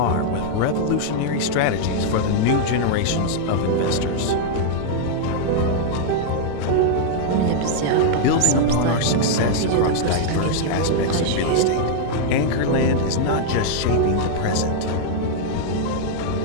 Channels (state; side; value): different; both; correlation -0.01